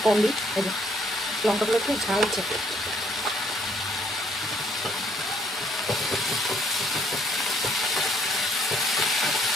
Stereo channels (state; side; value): normal; both; correlation 0.66